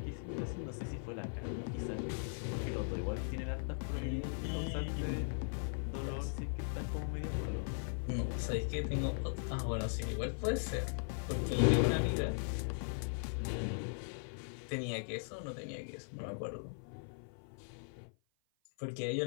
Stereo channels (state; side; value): silent; right; 52 dB below the other